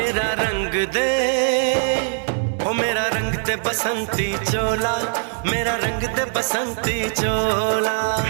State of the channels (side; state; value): left; silent; digital silence